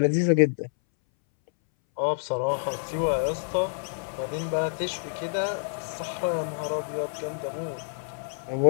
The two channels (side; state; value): right; silent; 60 dB below the other